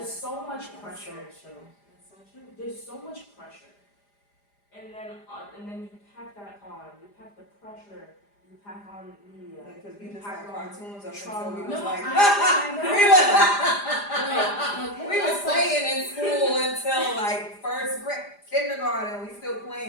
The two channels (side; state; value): right; late; 4.9 ms